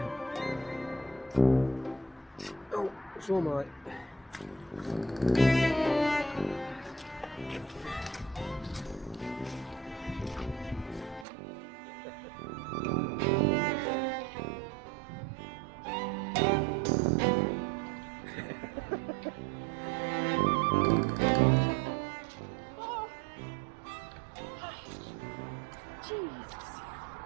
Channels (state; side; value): drops out; left; at 11.2 s